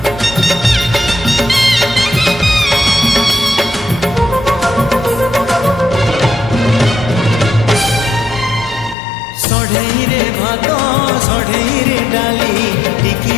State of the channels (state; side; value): drops out; right; at 9.0 s